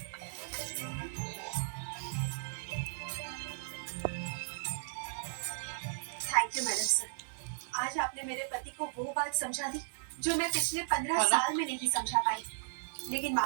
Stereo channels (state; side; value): silent; left; 54 dB below the other